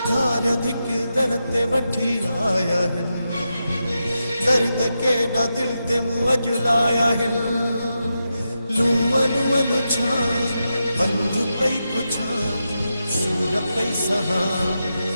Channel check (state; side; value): inverted; both; correlation -0.88